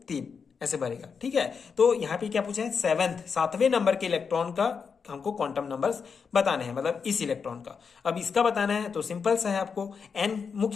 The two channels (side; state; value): right; quieter; 5.9 dB